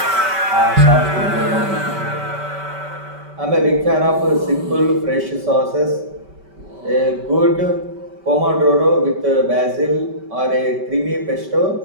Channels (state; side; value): late; left; 5.2 ms